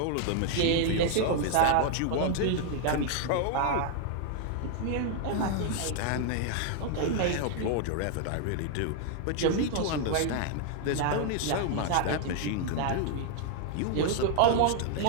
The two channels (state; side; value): different; both; correlation 0.00